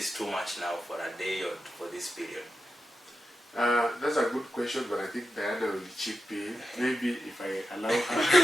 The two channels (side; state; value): both; normal; correlation 0.90